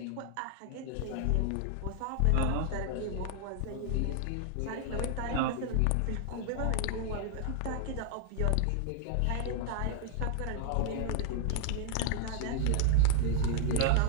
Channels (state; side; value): different; both; correlation 0.00